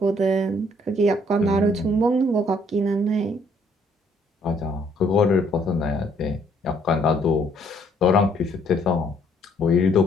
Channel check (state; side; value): normal; both; correlation 0.66